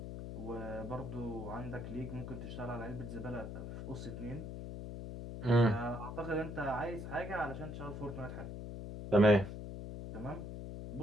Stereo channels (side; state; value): left; noise; hum, 7 dB below the sound